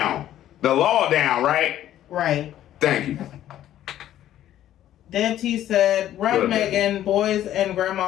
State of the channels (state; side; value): quieter; right; 12.3 dB